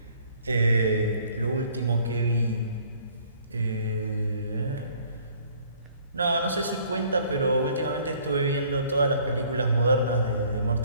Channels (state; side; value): inverted; both; correlation -0.58